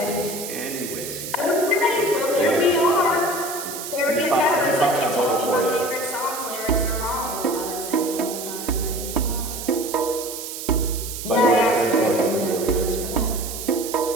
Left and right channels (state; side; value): noise; right; hiss, 8 dB below the sound